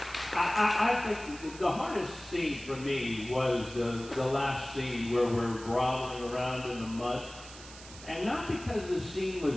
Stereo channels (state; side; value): noise; right; hiss, 16 dB below the sound